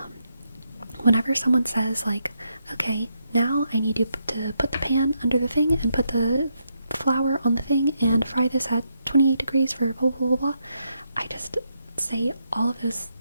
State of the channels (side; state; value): both; inverted; correlation -0.80